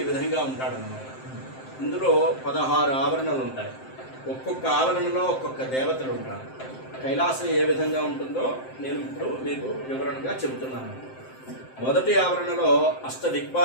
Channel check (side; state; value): right; late; 7.7 ms